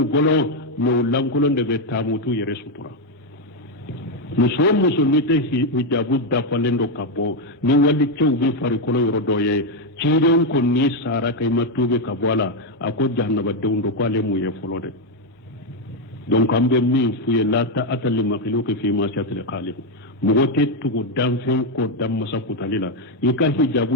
bolo mɛ o lankolon de bɛ taa mutu yɛrɛ sutura muso o muso n'i tɛ hijabu dafalen dɔ ka bɔ ni wali cɛw bɛ farikolo yɔrɔ dɔ ye ciden ko n'i sara ka i ma tuube ka bɔ a la a ko jahanabadenw don ko ale m'o ye fɔlɔ dɛ donc an bɛ min f'u ye la ta'ata li makhluqin fi ma'siyatil khaliq mɔgɔ tɛ tugu danfɛn ko dan masa kutali la i ka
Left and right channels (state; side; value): normal; both; correlation 0.04